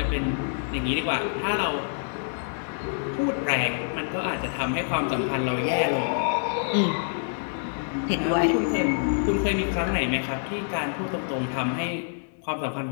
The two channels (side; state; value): right; silent; digital silence